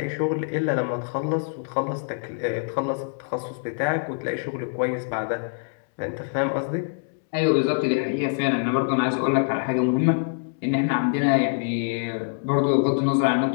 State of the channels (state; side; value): silent; right; digital silence